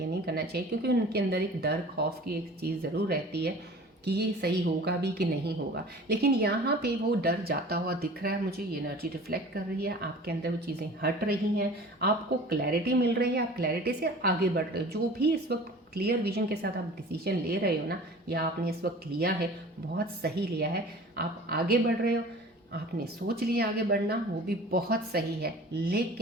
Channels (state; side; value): normal; both; correlation 0.43